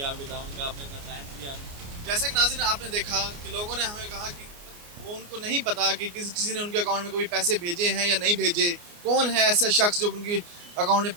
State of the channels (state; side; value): late; left; 29 ms